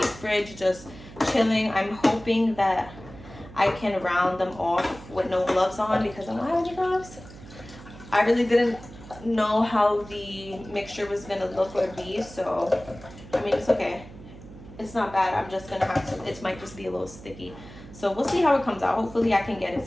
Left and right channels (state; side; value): noise; right; hum, 17 dB below the sound